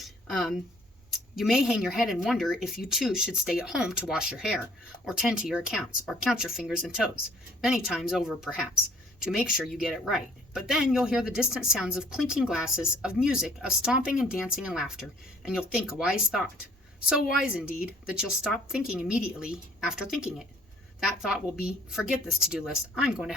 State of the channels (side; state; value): both; normal; correlation 0.58